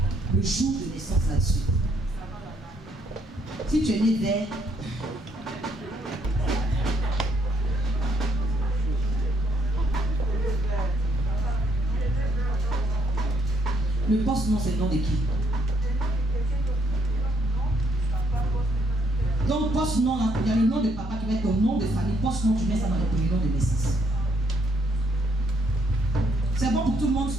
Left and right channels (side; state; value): both; normal; correlation 0.71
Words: le jour de naissance là-dessus. Si tu es né vers le poste-nom, c'est le nom de qui? Donc, poste-nom, il y a le nom de papa qui va être ton nom de famille. Poste-nom, tu mets ça dans le premier nom de naissance. C'est bon pour tout le monde.